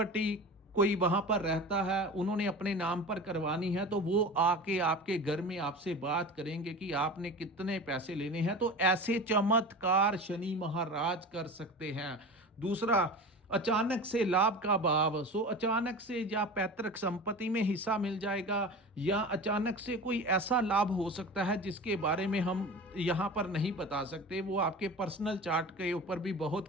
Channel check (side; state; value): both; normal; correlation 0.33